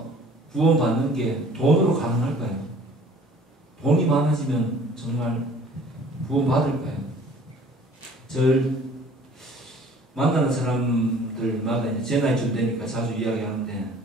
구원받는 게 돈으로 가능할까요? 돈이 많아지면 정말 구원받을까요? 만나는 사람들마다 이제 제 나이쯤 되니까 자주 이야기하는데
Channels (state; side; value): normal; both; correlation 0.52